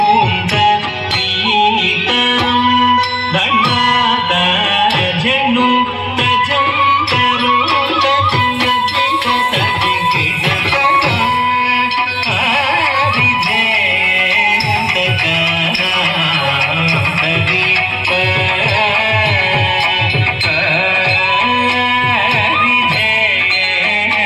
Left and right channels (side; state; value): both; identical; correlation 1.00